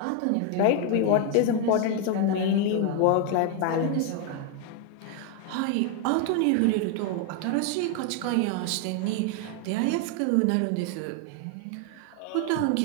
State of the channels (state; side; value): different; both; correlation 0.01